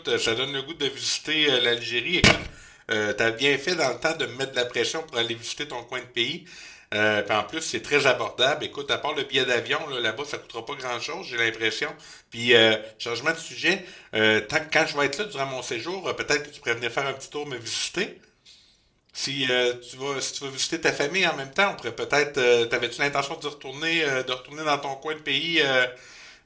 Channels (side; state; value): both; identical; correlation 1.00